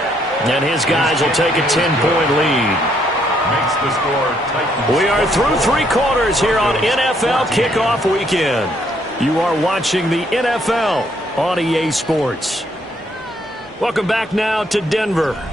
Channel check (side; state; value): both; normal; correlation 0.70